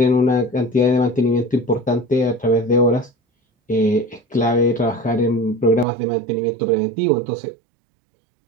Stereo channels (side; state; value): left; drops out; at 5.9 s